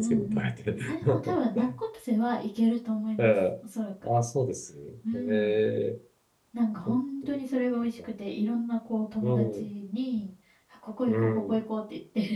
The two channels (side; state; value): both; identical; correlation 1.00